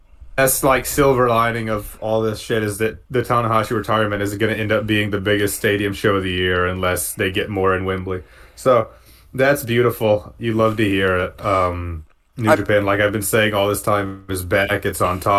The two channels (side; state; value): both; identical; correlation 1.00